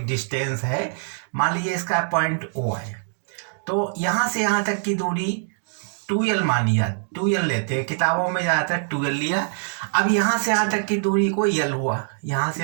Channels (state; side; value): silent; left; 63 dB below the other